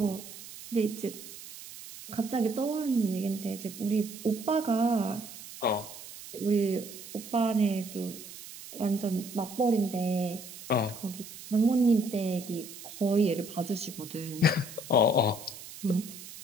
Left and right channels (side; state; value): right; noise; hiss, 14 dB below the sound